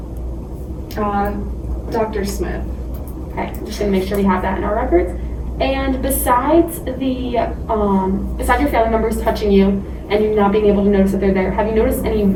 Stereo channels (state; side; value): identical; both; correlation 1.00